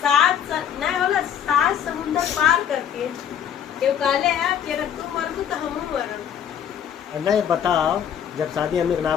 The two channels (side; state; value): right; quieter; 8.9 dB